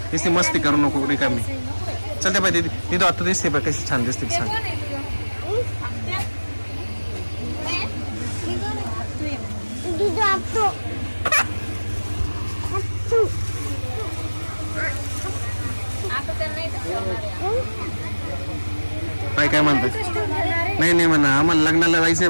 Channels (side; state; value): both; inverted; correlation -1.00